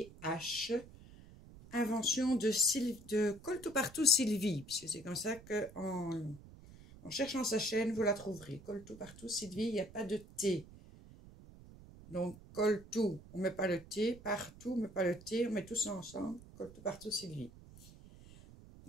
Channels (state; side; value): noise; right; rumble, 19 dB below the sound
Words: invention de Col-tout-partout Sylvie, puisque c'est comme ça que en cherchant sa chaîne, vous la trouverez. Col-tout-partout Sylvie, il n'y a pas de T. Donc, colle tout, on ne met pas le T, partout, on ne met pas le T, on met tout ça ensemble, colle tout partout Sylvie.